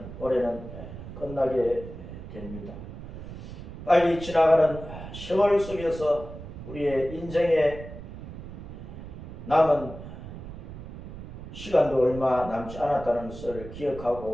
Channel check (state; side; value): noise; right; rumble, 11 dB below the sound